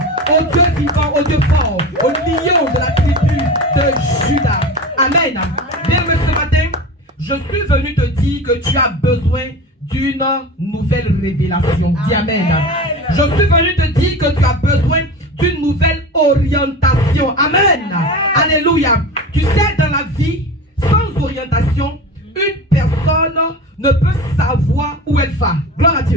Au Dieu vivant, au Dieu fort, au lion de la tribu de Judas. Amen. Bien-aimé, ce matin, je suis venu te dire que tu as besoin d'une nouvelle révélation. Dis amen. Je suis venu te dire que tu as besoin d'une nouvelle orientation. Amen. Alléluia. Tu sais, dans la vie, sans orientation, une personne ne peut savoir où elle va. Gloire à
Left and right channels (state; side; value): normal; both; correlation 0.30